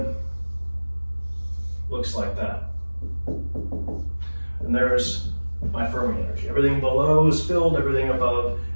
looks like that. And there's my Fermi energy. Everything below is filled, everything above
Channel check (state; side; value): inverted; both; correlation -1.00